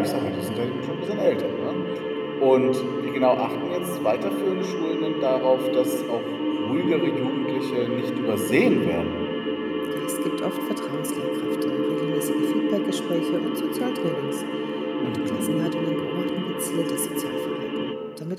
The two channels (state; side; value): identical; both; correlation 1.00